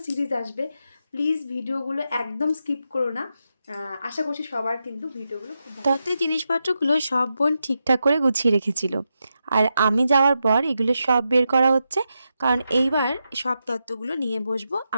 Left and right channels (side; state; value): both; inverted; correlation -0.87